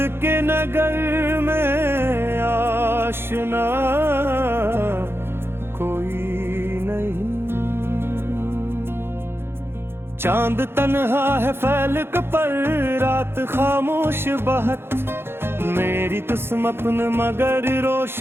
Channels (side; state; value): left; late; 0.11 ms